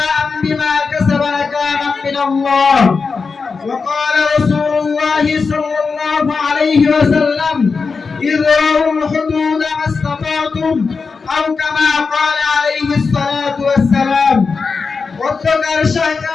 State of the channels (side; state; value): right; quieter; 4.8 dB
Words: بما كسبا نكالا من الله. وقال رسول الله صلى الله عليه وسلم: اذرعوا الحدود ما استطعتم، أو كما قال عليه الصلاة والسلام. অধ্যকার